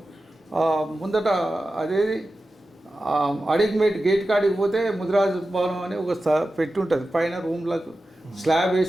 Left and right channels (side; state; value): both; normal; correlation 0.93